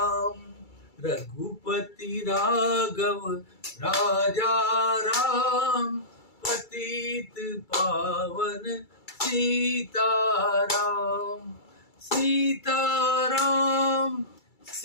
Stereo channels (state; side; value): late; right; 2.3 ms